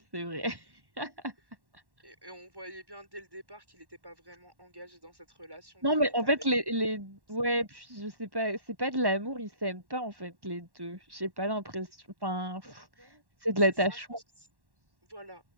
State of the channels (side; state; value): left; late; 1.1 ms